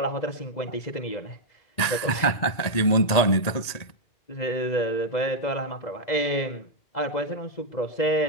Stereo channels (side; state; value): right; late; 1.9 ms